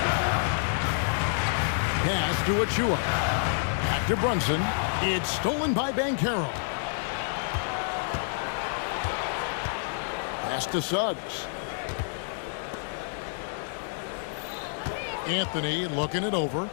Pass to Achua. Back to Brunson. It's stolen by Banchero. Pass to Suggs. Anthony looking it over.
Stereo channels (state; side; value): silent; right; digital silence